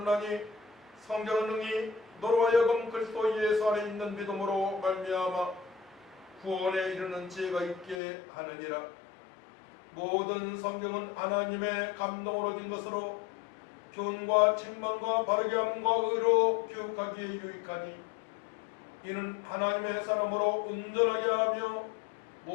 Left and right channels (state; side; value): drops out; right; at 8.0 s